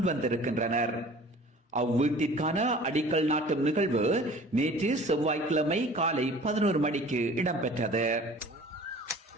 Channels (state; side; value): normal; both; correlation 0.46